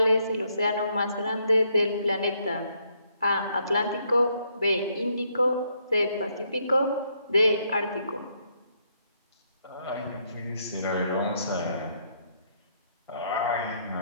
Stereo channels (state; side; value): inverted; both; correlation -0.73